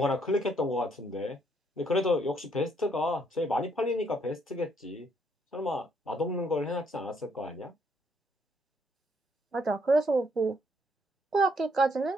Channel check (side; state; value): both; normal; correlation 0.70